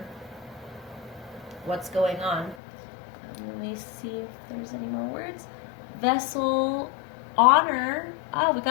what's going on. Let me see if there's any more words. Vessel, honor. Oh, we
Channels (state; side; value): drops out; right; at 2.6 s